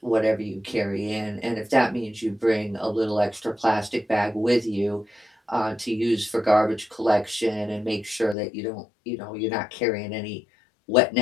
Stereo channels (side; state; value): right; drops out; at 8.3 s